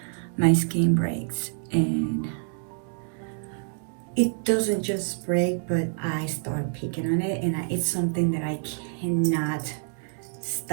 my skin breaks, and it doesn't just break, but I start picking on it, and it's something that I cannot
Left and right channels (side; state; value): left; silent; 60 dB below the other